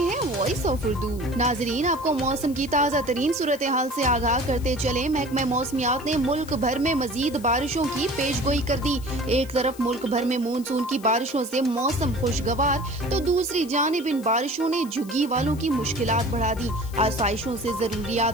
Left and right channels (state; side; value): noise; left; hiss, 20 dB below the sound